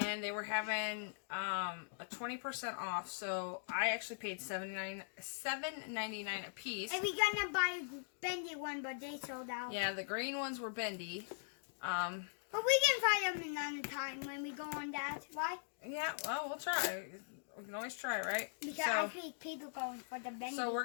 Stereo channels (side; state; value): right; silent; digital silence